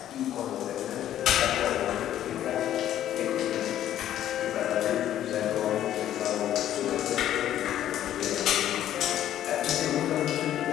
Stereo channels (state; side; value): quieter; right; 11.7 dB